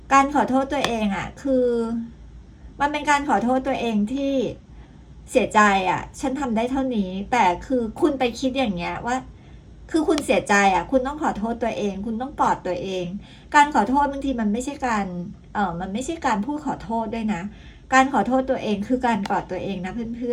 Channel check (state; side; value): identical; both; correlation 1.00